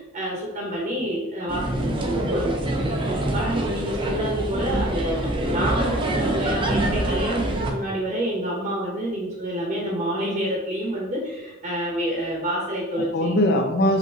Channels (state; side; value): normal; both; correlation 0.45